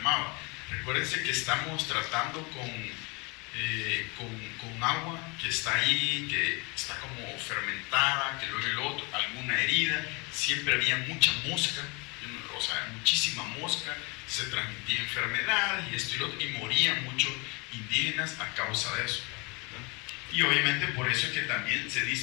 Recuérdense que estamos tratando con agua que está ahí, que está como fermentada, que luego el otro, alguna herida, siempre había mucha mosca, o sea, muchísima mosca, se transmitía enfermedades y esto y lo otro, y morían muchos indígenas a causa de eso, ¿verdad? Y obviamente por eso es que también se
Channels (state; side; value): quieter; right; 28.9 dB